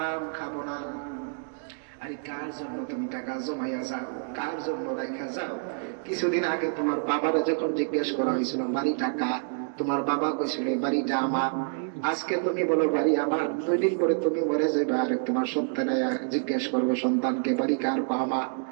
খাবো না। আরে কার জন্য তুমি টাকা জমাইয়া যাও, কার জন্য রাখা যাও? কিছুদিন আগে তোমার বাবারা যখন জিজ্ঞেস করা হয়েছিল বাড়িটা কার, তোমার বাবা কইছিল বাড়িটা আমার। আজকে তুমি বলো বাড়ি আমার, 2 দিন পরে তুমি মরে যাবে, আর তোমার সন্তান জিজ্ঞেস করবে সন্তানকে বাড়ি কার? আমার।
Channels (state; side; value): silent; left; digital silence